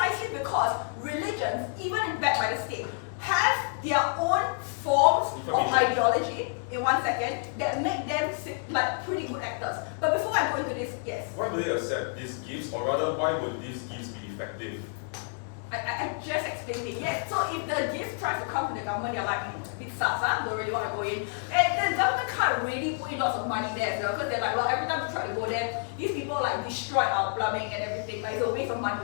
because religions, even backed by the state, have their own forms of ideology, in 1 second, that make them like pretty good actors. But before I go into this, yes? Why would they accept these gifts, or rather, why would these gifts be effective? I just explained it, yes. So if the gift tries to come from the government, you're like, bit sus, don't really want to go in. And the government can't really put in lots of money there as well, because they're like, well, every time we try to go there, these people like destroy our plumbing and everything. Like, it's a waste of money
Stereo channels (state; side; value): silent; right; 59 dB below the other